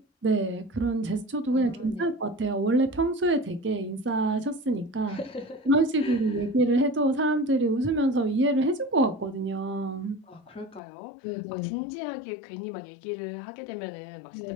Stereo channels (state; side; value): drops out; right; at 10.8 s